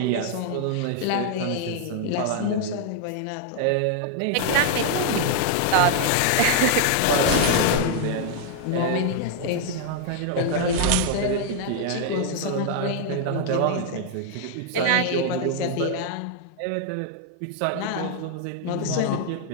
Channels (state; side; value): different; both; correlation 0.00